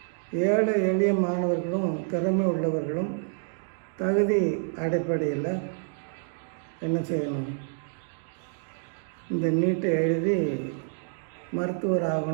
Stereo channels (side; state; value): left; silent; digital silence